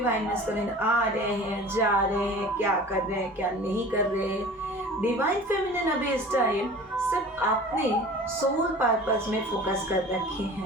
मैस्कुलिन आ रहे हैं, जा रहे हैं, क्या कर रहे हैं, क्या नहीं कर रहे हैं। डिवाइन फेमिनिन अभी इस टाइम सिर्फ अपने सोल पर्पस में फोकस कर रखे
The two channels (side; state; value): both; normal; correlation 0.41